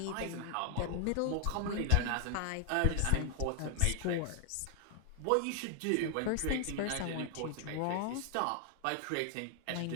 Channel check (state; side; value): different; both; correlation 0.00